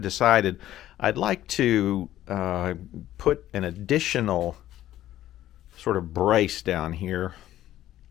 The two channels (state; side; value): quieter; right; 13.4 dB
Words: decided I'd like to put an additional sort of brace down here